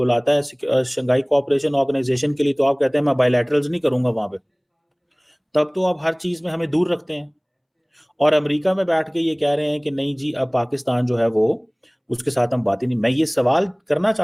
है शंघाई कोऑपरेशन ऑर्गेनाइजेशन के लिए, तो आप कहते हैं मैं बायलैटरल्स नहीं करूंगा वहां पे। तब तो आप हर चीज में हमें दूर रखते हैं। और अमेरिका में बैठ के ये कह रहे हैं कि नहीं जी, अब पाकिस्तान जो है वो, उसके साथ हम बात ही नहीं। मैं ये सवाल करना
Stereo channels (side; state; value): both; identical; correlation 1.00